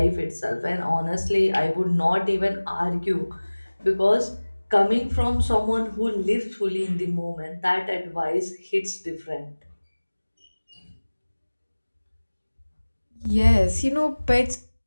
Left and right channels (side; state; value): both; inverted; correlation -1.00